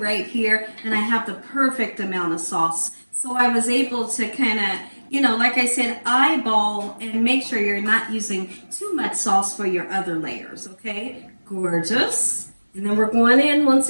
here, and I have the perfect amount of sauce. So I was able to kind of, you know, like I said, eyeball and make sure you're not using too much sauce for your other layers, okay? Gorgeous. And then we're going in once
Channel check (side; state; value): both; inverted; correlation -1.00